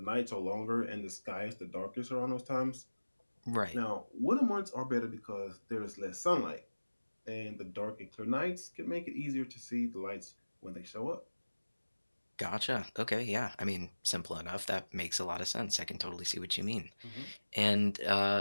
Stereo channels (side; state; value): both; inverted; correlation -1.00